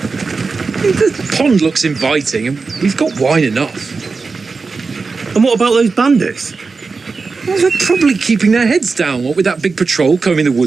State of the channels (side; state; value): left; quieter; 4.4 dB